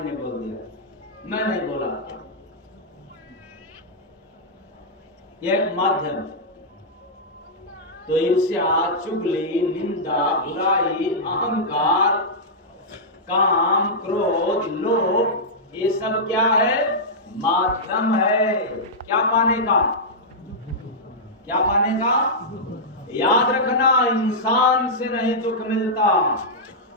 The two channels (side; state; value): both; normal; correlation -0.10